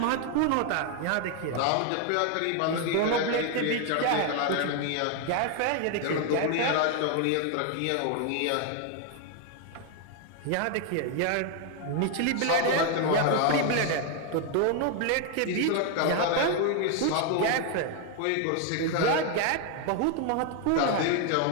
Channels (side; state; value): both; different; correlation 0.01